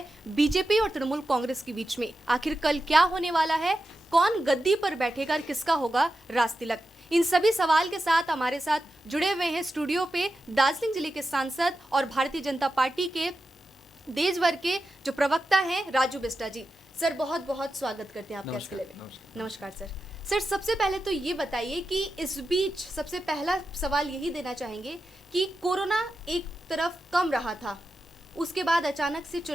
बीजेपी और तृणमूल कांग्रेस के बीच में, आखिर कल क्या होने वाला है, कौन गद्दी पर बैठेगा और किसका होगा राज तिलक। इन सभी सवाल के साथ हमारे साथ जुड़े हुए हैं स्टूडियो पे दार्जिलिंग जिले के सांसद और भारतीय जनता पार्टी के देश भर के जो प्रवक्ता हैं राजू बिस्टा जी। सर बहुत बहुत स्वागत करते हैं आपके इस किले में। नमस्कार सर। सर सबसे पहले तो ये बताइए कि इस बीच सबसे पहला सवाल यही देना चाहेंगे कि कोरोना एक तरफ कम रहा था, उसके बाद अचानक से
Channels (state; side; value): normal; both; correlation 0.90